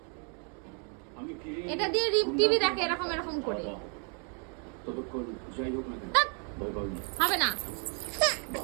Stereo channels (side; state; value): left; quieter; 39.4 dB